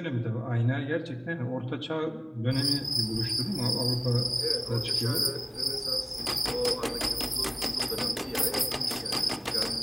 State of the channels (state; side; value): identical; both; correlation 1.00